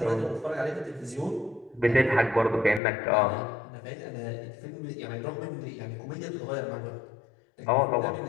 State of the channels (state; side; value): drops out; right; at 2.8 s